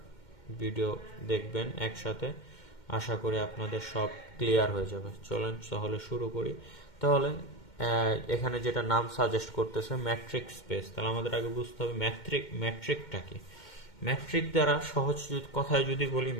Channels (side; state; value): right; late; 2.1 ms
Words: ভিডিও দেখবেন একসাথে। আশা করি আপনাদের সব ক্লিয়ার হয়ে যাবে। চলেন তাহলে শুরু করি। তাহলে এখানে যেটা নাম সাজেস্ট করতেছে ম্যাট্রিক স্পেস, তাহলে আমাদের আগে বুঝতে হবে ম্যাট্রিকটা কি। ম্যাট্রিক দ্বারা সহজ কথায় যদি বলি,